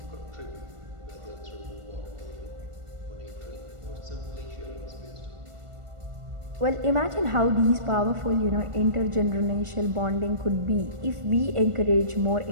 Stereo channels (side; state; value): left; late; 1.4 ms